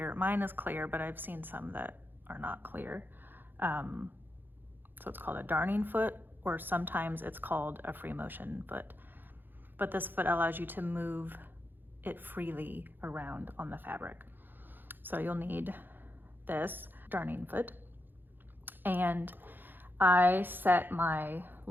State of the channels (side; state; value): left; late; 0.093 ms